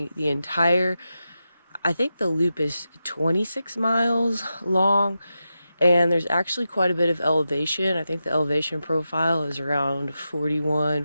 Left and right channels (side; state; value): both; inverted; correlation -0.90